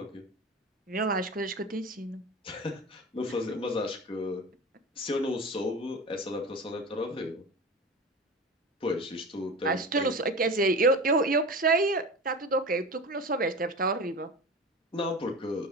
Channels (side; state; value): both; normal; correlation 0.31